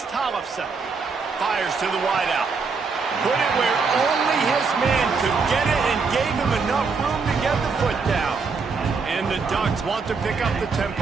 Tollefson. Fires to the wideout. Put it where only his man could get it and gave him enough room to get the foot down. And the Ducks want to pick up the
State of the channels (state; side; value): quieter; left; 4.8 dB